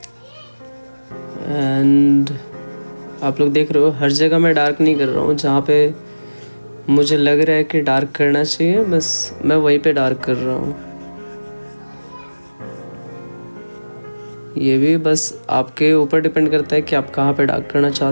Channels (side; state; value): both; inverted; correlation -1.00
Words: एंड आप लोग देख रहे हो हर जगह मैं डार्क नहीं कर रहा हूँ, जहाँ पे मुझे लग रहा है कि डार्क करना चाहिए बस मैं वहीं पे डार्क कर रहा हूँ। ये भी बस आपके ऊपर डिपेंड करता है कि आप कहाँ पे डार्क करना